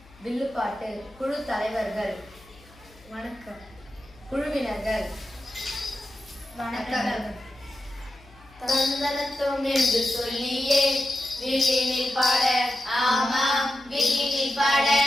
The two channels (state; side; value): noise; left; hum, 25 dB below the sound